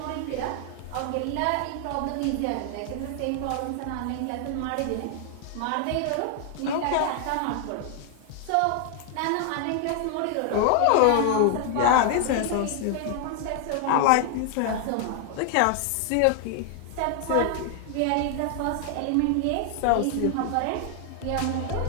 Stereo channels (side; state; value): both; different; correlation 0.00